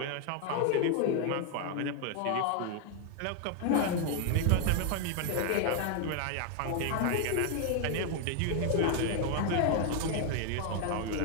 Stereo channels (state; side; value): different; both; correlation 0.00